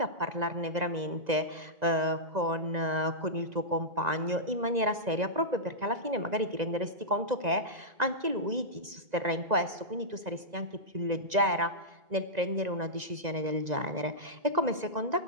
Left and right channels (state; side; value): late; left; 2.0 ms